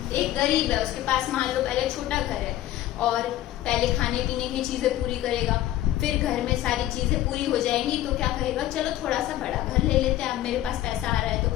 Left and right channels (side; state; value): right; quieter; 13.9 dB